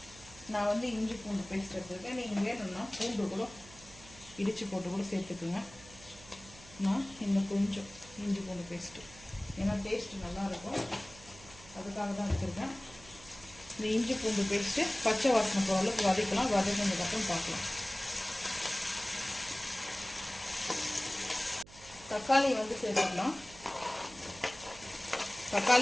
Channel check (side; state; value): right; noise; hum, 20 dB below the sound